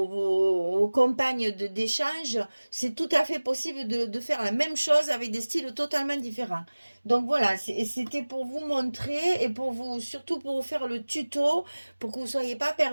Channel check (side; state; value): both; inverted; correlation -1.00